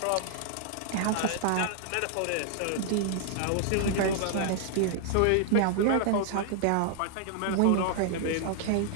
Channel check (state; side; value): different; both; correlation 0.00